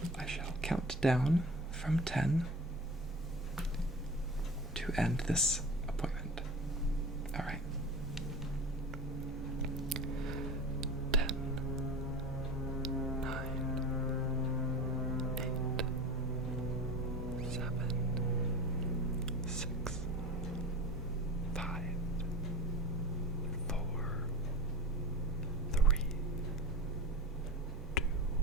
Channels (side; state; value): both; normal; correlation 0.33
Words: I shall count down from 10 to end this